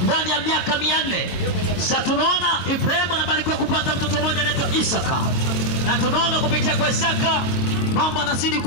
ndani ya miaka 400. Sasa tunaona Ibrahim anabarikiwa kupata mtoto mmoja anaitwa Isaka. Na tunaona kupitia kwa Isaka mambo yanazidi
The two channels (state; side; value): late; right; 22 ms